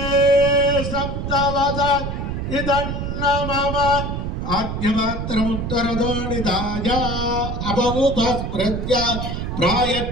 सप्तवद इदन्न मम आद्यमात्रमुत्तरदो निधाय अपौपस्पृत्य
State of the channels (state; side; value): noise; right; rumble, 3 dB below the sound